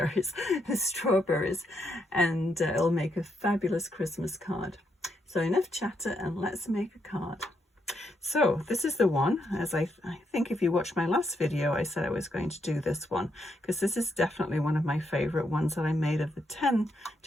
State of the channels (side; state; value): both; normal; correlation 0.79